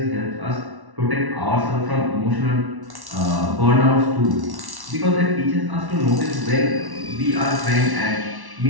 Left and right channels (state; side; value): late; left; 1.1 ms